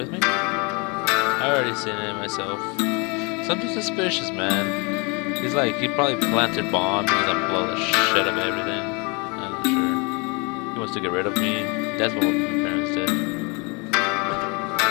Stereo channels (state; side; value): quieter; right; 30.4 dB